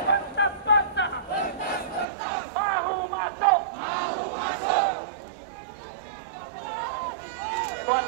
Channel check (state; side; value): drops out; left; at 2.1 s